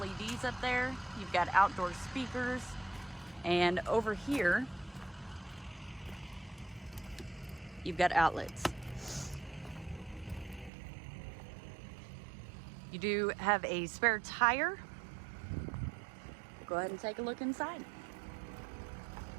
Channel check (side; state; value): left; drops out; at 10.7 s